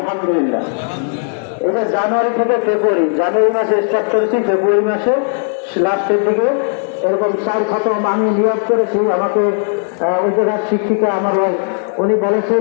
এটা জানুয়ারি থেকে ফেব্রুয়ারি, জানুয়ারি মাসে স্টার্ট করেছি, ফেব্রুয়ারি মাসে লাস্টের দিকে এরকম 4 খতম আমি নিয়োগ করেছি। আমাকে ওই জায়গার শিক্ষিকা আমার উনি বলেছে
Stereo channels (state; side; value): silent; right; 61 dB below the other